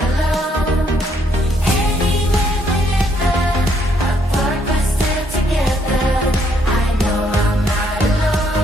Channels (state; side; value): normal; both; correlation 0.70